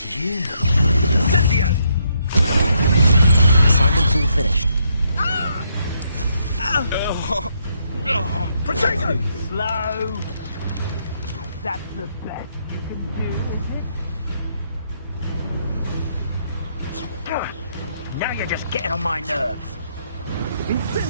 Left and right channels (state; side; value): inverted; both; correlation -0.75